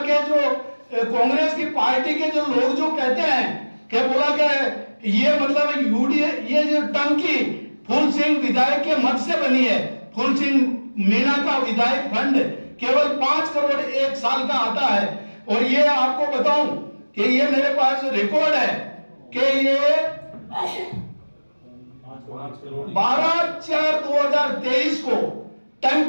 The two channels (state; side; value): inverted; both; correlation -1.00